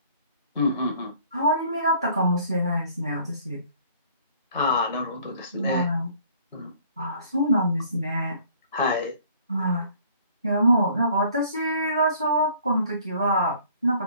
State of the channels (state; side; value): inverted; both; correlation -0.56